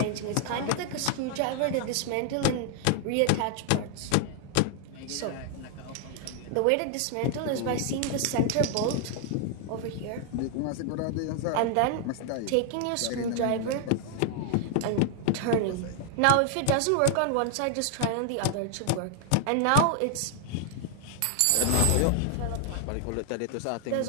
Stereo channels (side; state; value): both; different; correlation 0.00